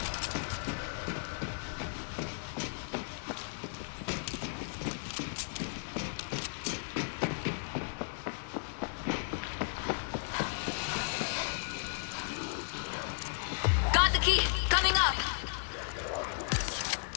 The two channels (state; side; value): silent; right; 55 dB below the other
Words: Got the key. Coming up.